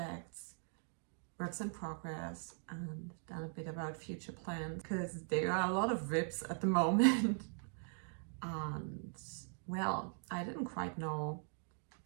works in progress, and then a bit about future plans, because there are a lot of rips at the moment. And well, I didn't quite know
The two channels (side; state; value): left; silent; 51 dB below the other